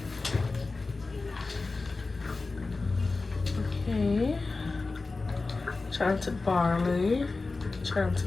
Okay. Chanted barley,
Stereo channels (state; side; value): quieter; right; 3.7 dB